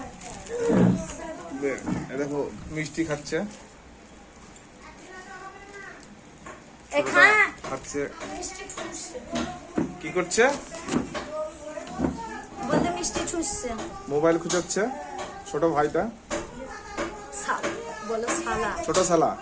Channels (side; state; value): both; identical; correlation 1.00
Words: দেখো মিষ্টি খাচ্ছে খাচ্ছে। কি করছে? বলতে মিষ্টি ছুঁচছে। মোবাইল খুঁজাচ্ছে ছোট ভাইটা। বলো শালা। ছোট শালা